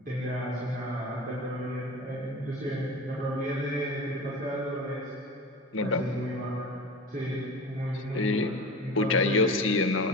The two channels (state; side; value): normal; both; correlation 0.34